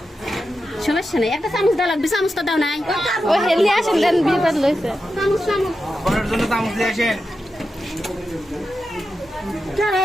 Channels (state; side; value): normal; both; correlation 0.90